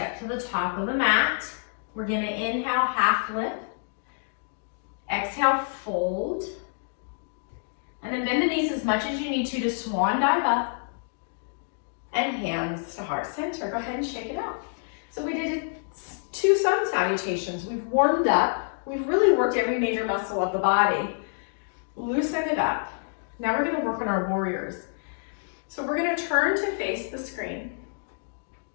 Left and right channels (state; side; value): silent; right; digital silence